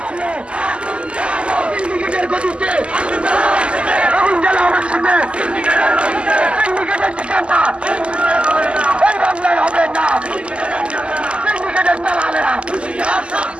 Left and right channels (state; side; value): late; left; 0.054 ms